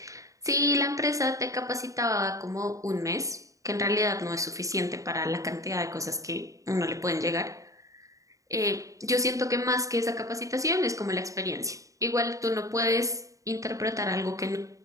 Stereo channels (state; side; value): late; left; 0.16 ms